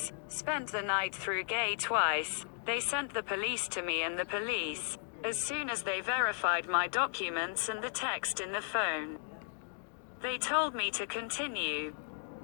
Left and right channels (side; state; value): right; silent; digital silence